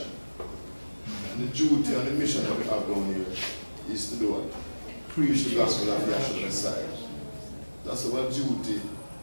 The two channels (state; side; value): inverted; both; correlation -1.00